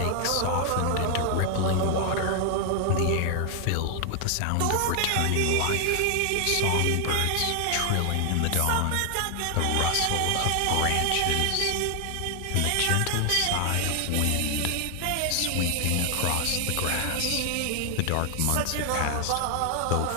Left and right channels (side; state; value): both; different; correlation 0.00